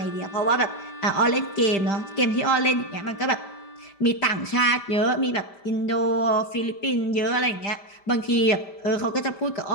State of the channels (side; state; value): right; late; 5.1 ms